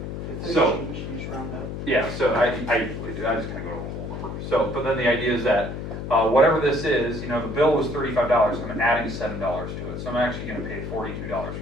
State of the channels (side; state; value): left; noise; hum, 6 dB below the sound